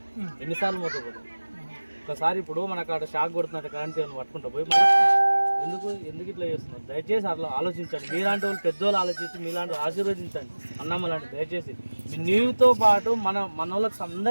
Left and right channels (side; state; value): both; inverted; correlation -1.00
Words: ఎన్నిసార్లు మోసపోతున్నాం. ఒకసారి ఇప్పుడు మనకు అక్కడ షాక్ కొడుతున్నట్టు కరెంట్ పట్టుకుంటా పోయి ఎందుకు ఇట్లా చేస్తున్నారు? దయచేసి అట్లా ఆలోచించండి. మీలాంటి వాళ్ళు పెద్దోళ్ళు ఆలోచించి మీలాంటి ఆశీర్వదించండి అన్నమ్మ లాంటి. దయచేసి నీతో పాటు మన వాళ్ళకి